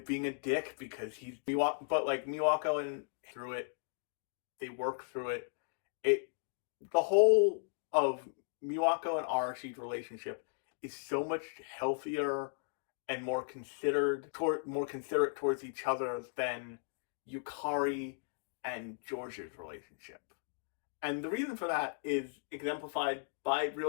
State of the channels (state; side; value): silent; right; digital silence